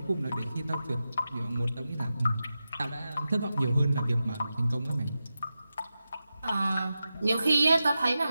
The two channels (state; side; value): inverted; both; correlation -0.91